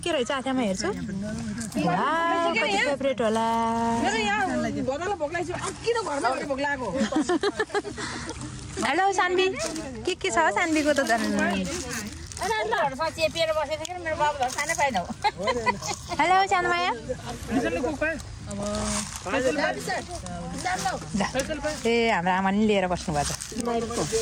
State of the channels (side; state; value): both; identical; correlation 1.00